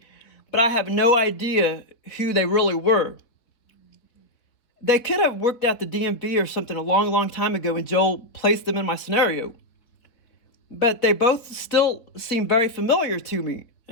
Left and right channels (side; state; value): right; late; 4.3 ms